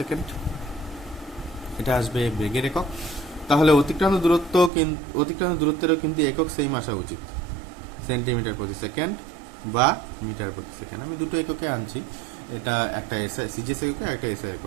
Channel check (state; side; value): drops out; left; at 4.7 s